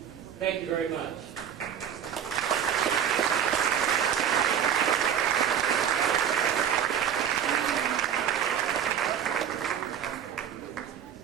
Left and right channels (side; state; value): left; quieter; 8.7 dB